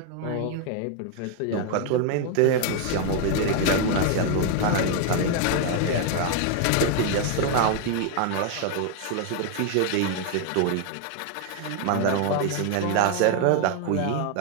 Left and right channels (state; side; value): different; both; correlation 0.00